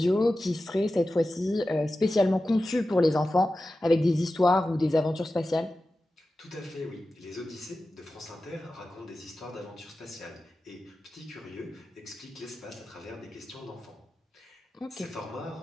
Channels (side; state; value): both; normal; correlation 0.94